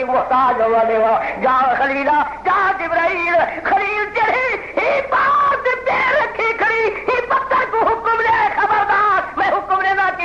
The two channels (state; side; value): identical; both; correlation 1.00